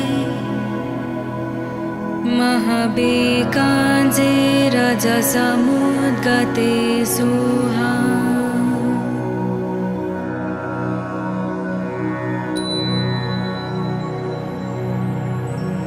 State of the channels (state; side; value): identical; both; correlation 1.00